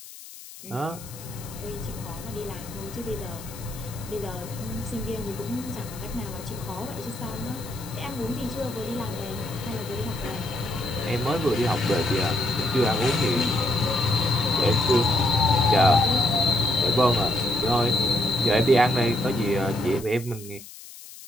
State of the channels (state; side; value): noise; left; hiss, 16 dB below the sound